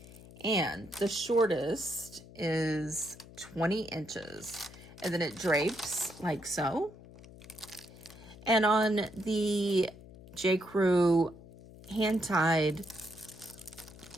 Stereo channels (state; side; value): noise; left; hum, 19 dB below the sound